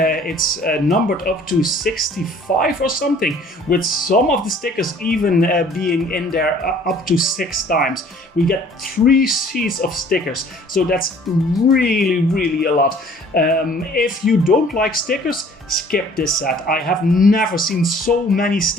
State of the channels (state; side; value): normal; both; correlation 0.54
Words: numbered up to 65 or something, with some of the stickers even being in there up to 6 times. We get 3 sheets of stickers, so that's really a lot. If you don't like stickers, skip this set. I have never seen so many